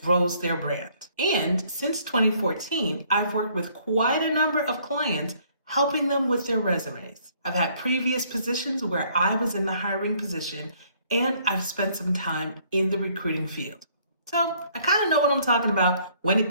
grows their brand. And since 2014, I've worked with quite a number of clients helping them with their resumes. I've had previous positions where I was in the hiring position, and I've spent some time in the recruiting field. So I kind of know what I'm talking about when it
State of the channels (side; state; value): both; inverted; correlation -0.63